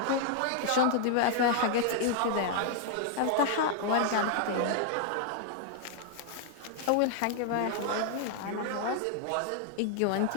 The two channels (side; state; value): both; different; correlation -0.01